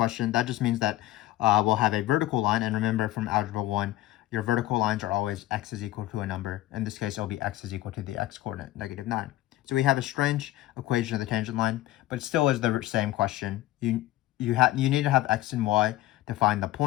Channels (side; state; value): right; quieter; 15.8 dB